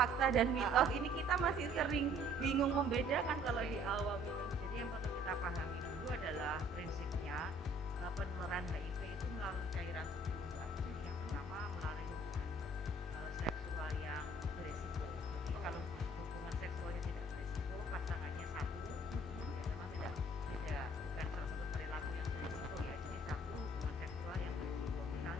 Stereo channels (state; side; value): normal; both; correlation 0.57